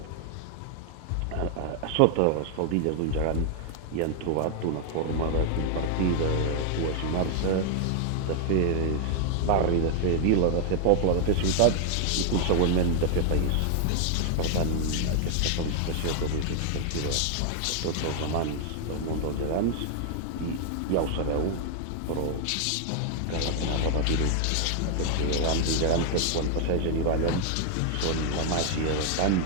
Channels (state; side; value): different; both; correlation 0.00